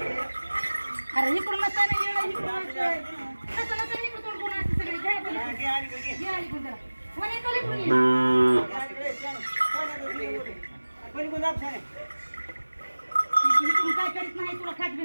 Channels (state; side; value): inverted; both; correlation -1.00